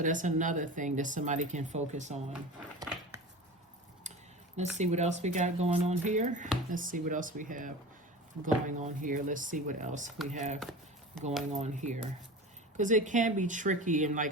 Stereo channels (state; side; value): normal; both; correlation 0.33